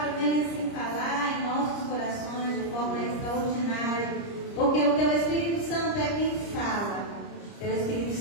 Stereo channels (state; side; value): late; right; 30 ms